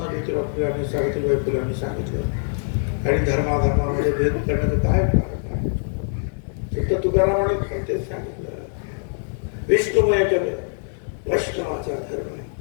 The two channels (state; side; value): silent; right; 60 dB below the other